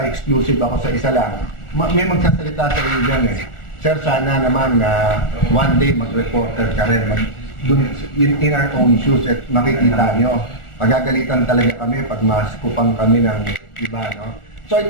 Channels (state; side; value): late; right; 1.4 ms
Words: ako sa isa lang, may magsasalita sa iyo dyan eh. Sir, sana naman one day mag-reporter ka rin, in our own shoes at makikita nyo. Magagalitan talaga kami pag maskupang kami ng iba, no? So I